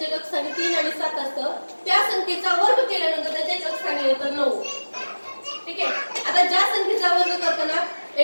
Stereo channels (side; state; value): both; inverted; correlation -1.00